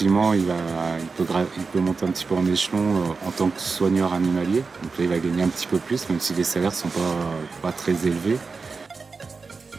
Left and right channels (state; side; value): quieter; left; 4.5 dB